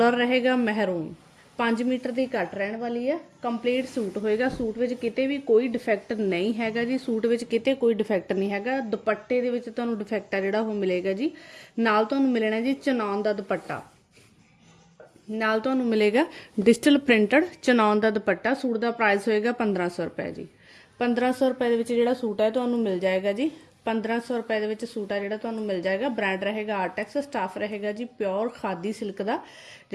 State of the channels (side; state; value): both; identical; correlation 1.00